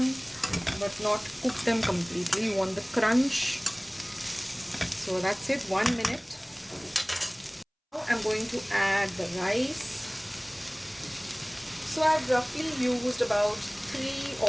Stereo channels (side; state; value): both; identical; correlation 1.00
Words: but not cook them completely. You want the crunch. So that's it, 1 minute. Now I'm going to add the rice. So I've roughly used about